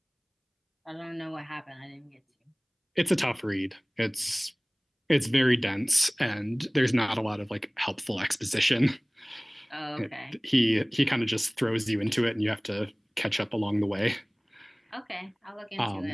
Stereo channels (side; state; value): both; identical; correlation 1.00